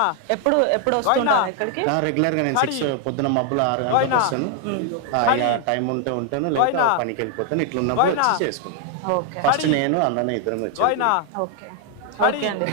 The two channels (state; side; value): different; both; correlation 0.00